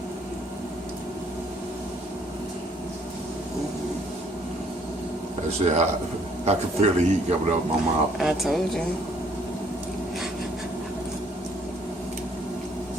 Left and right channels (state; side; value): normal; both; correlation 0.63